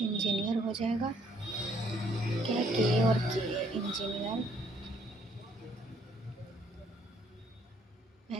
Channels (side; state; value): both; normal; correlation 0.66